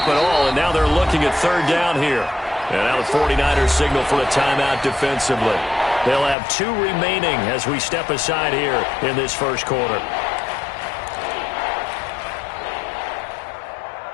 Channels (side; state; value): right; drops out; at 6.4 s